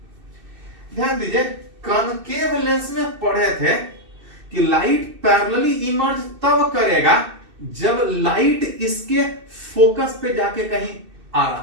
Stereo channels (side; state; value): left; late; 2.6 ms